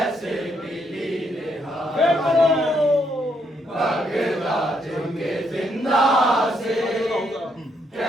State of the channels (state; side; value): normal; both; correlation 0.75